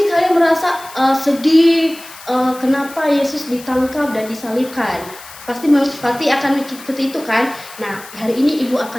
kalian merasa sedih, kenapa Yesus ditangkap dan disalibkan. Pasti akan mikir seperti itu kan. Nah, hari ini Ibu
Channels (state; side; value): noise; left; hiss, 17 dB below the sound